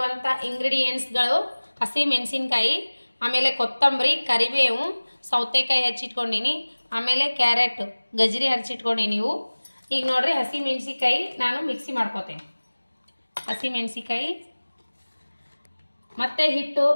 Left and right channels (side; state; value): both; inverted; correlation -1.00